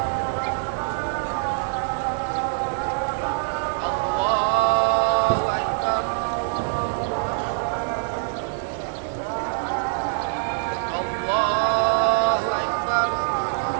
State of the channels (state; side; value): silent; left; digital silence